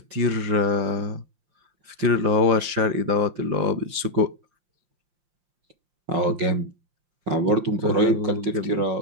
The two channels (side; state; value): left; late; 5.7 ms